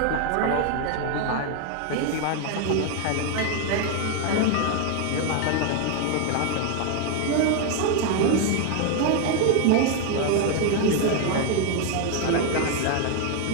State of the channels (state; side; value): different; both; correlation 0.01